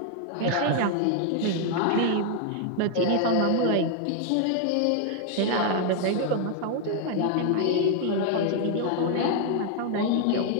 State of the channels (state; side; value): different; both; correlation 0.00